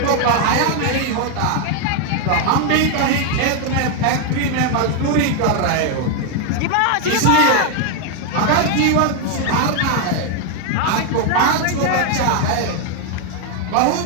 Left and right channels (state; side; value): different; both; correlation 0.01